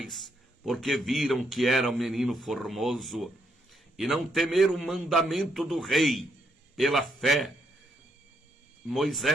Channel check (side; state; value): both; normal; correlation 0.76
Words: porque viram que era um menino formoso, e não temeram o mandamento do rei. Pela fé,